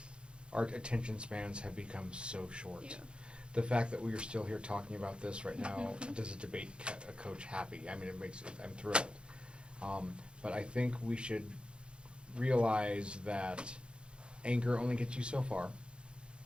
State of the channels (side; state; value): left; late; 0.055 ms